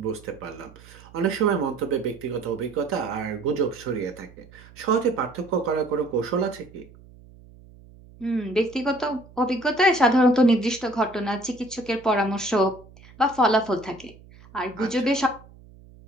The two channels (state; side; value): noise; right; hum, 23 dB below the sound